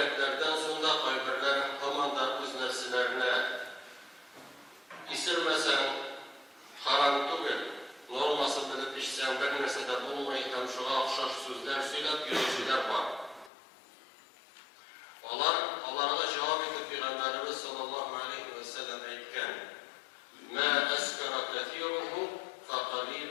sonra kaybırlar tamamda öz nefsilerine isirmesen haram tügül, norması bilip işsen bir nesede bulmayı hem şuna akşaş sözler söylep yürüyüşler var. Onlara cevap edip Peygamberimiz sallallahu aleyhi ve sellem aytken: "Ma eskara kethiruhu fa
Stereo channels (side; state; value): right; drops out; at 13.5 s